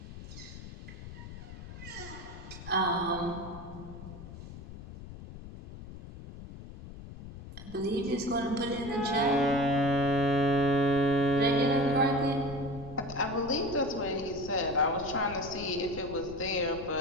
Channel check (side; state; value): left; noise; rumble, 13 dB below the sound